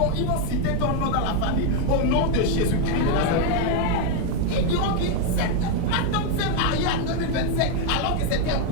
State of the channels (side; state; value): both; different; correlation 0.01